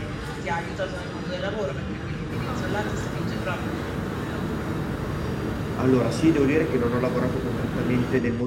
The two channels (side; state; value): both; identical; correlation 1.00